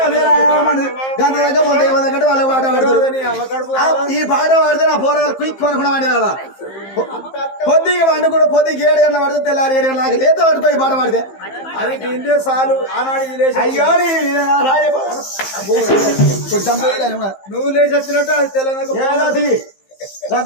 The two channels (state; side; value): late; right; 15 ms